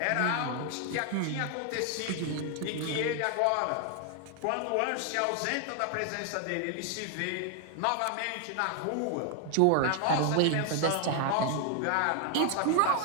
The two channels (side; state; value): both; different; correlation 0.00